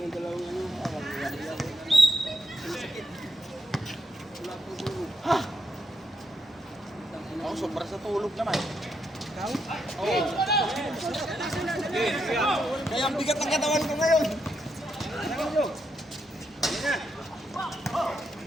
yung dalawang ano. Ako, sobra sa tulog naman. Kaya ang bigat ng katawan ko ngayon.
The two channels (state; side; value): normal; both; correlation 0.80